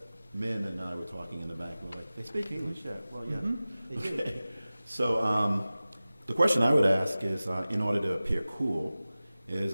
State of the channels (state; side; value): inverted; both; correlation -0.97